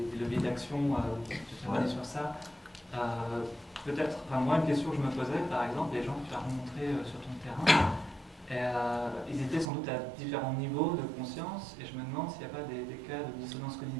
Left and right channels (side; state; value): left; drops out; at 9.7 s